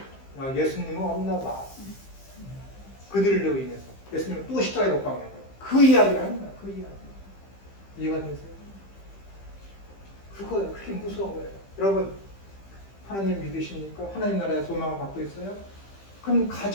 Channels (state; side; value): late; right; 15 ms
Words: 예수님은 없나 봐. 그들로 인해서. 예수님은 또 십자가에 못 박는 거야. 그 이야기를 하는 거야. 그 이야기. 이해가 되세요? 그거예요. 그게 무서운 거예요. 여러분, 하나님 믿으십니까? 하나님 나라의 소망을 갖고 있어요? 그럼